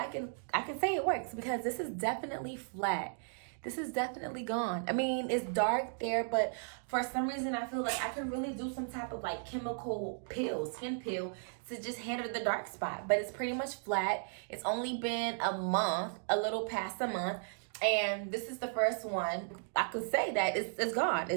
can say it works because this is definitely flat. This is definitely gone. I mean, it's dark there, but for some reason I feel like I could really do some type of like chemical peel, skin peel, to just handle the dark spot. But it's pretty much flat. It's only been a month, a little past a month. And this is the first one. I could say that it's gone.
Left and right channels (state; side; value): silent; left; digital silence